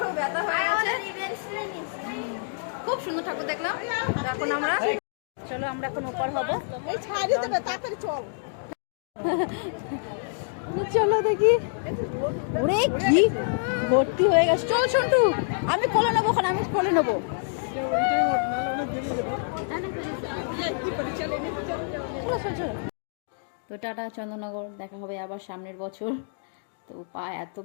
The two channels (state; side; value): silent; right; digital silence